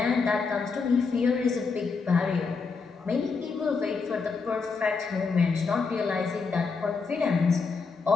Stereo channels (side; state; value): right; quieter; 4.8 dB